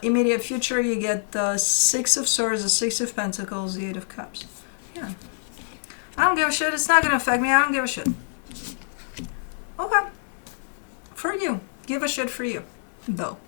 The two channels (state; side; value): silent; right; digital silence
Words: immediate future, you get the Six of Swords, the Six of Pentacles, the Eight of Cups. Yeah. I don't give a shit. It's not going to affect me. I don't give a shit. Okay. For you. Give a shit for you, though.